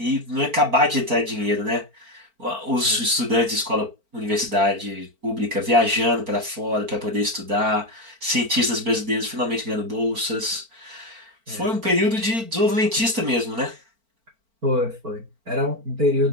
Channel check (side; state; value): left; late; 4.4 ms